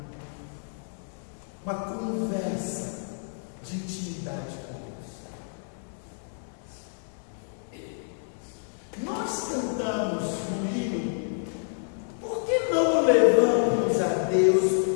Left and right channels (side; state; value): right; silent; 59 dB below the other